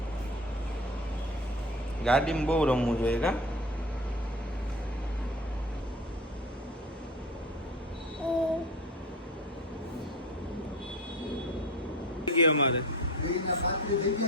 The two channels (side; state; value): both; normal; correlation 0.33